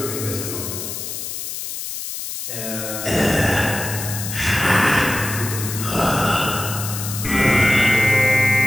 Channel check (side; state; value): left; noise; hiss, 6 dB below the sound